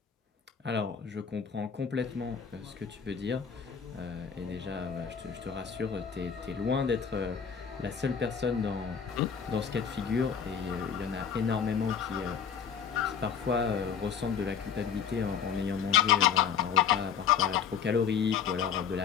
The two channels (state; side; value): quieter; right; 7.2 dB